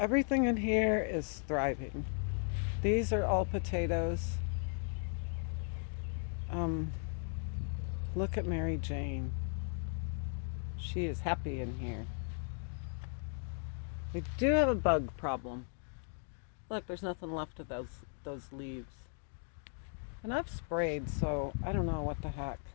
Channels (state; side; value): silent; right; 53 dB below the other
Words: in here is thriving. These are all potatoes. Look at Mary Jane. She is happy in here. We do have a bug problem. Look, there's nothing left of those leaves. And I've sprayed, so I don't know what the heck.